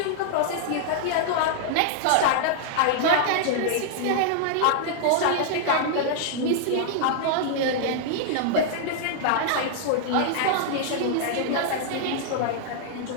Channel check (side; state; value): both; different; correlation -0.01